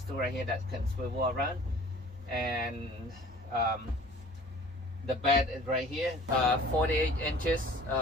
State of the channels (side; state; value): both; normal; correlation 0.48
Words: to right here that can swivel around. And the bed is right here, 48 inches